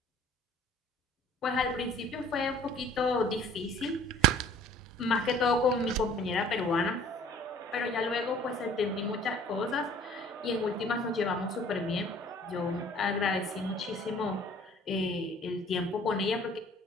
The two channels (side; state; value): both; normal; correlation 0.52